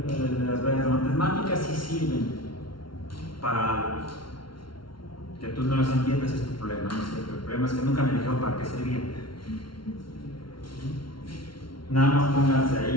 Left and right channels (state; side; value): late; right; 0.73 ms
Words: matemáticas sí sirven para algo. Que tú no las entiendas es tu problema, ¿no es cierto? El problema es que nunca me dijeron para qué servían. Nada más pónganse